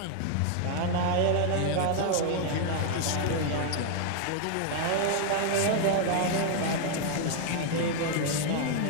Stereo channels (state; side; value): different; both; correlation 0.00